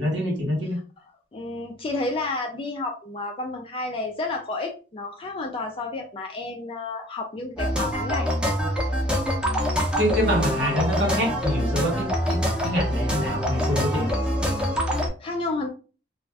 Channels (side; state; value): both; normal; correlation 0.54